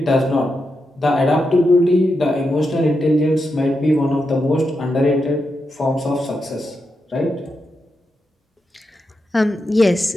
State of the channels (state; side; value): normal; both; correlation 0.86